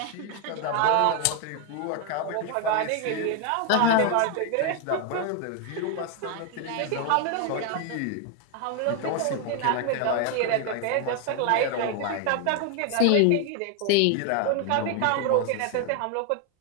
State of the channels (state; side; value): different; both; correlation 0.01